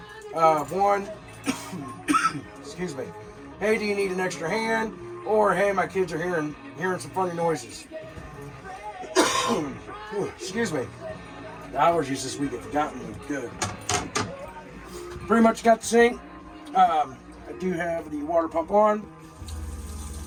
one, excuse me, hey, do you need an extra hand? Or, hey, my kids are hearing some funny noises. Excuse me. The allergies this week have gotten me good. Pretty much got the sink. I do have the water pump on.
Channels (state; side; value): identical; both; correlation 1.00